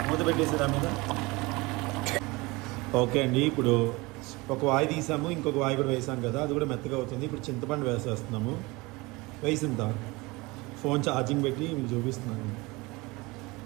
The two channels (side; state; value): left; quieter; 23.6 dB